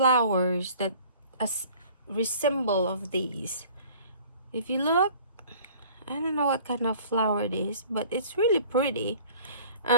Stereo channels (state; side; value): inverted; both; correlation -0.49